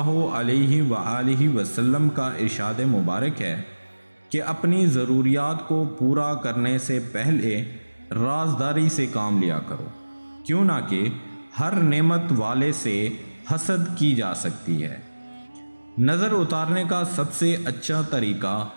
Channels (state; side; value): inverted; both; correlation -1.00